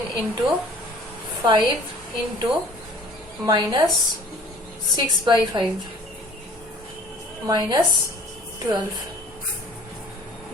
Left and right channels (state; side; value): normal; both; correlation 0.50